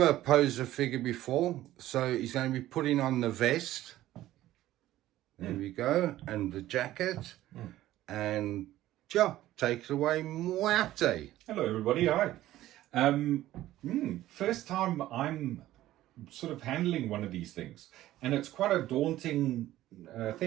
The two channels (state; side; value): quieter; left; 14.6 dB